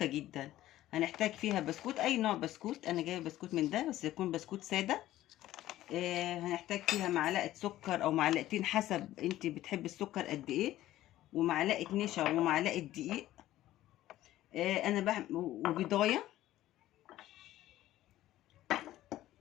جدا. هنحتاج فيها بسكوت، اي نوع بسكوت. انا جايبه بسكوت من ده بس يكون بسكوت ساده. هنحتاج فيها معلقه سكر او معلقتين حسب انت بتحب السكر قد ايه، ومعلقه نشا ومعلقه دقيق. انا وبيضايه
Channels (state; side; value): quieter; right; 14.5 dB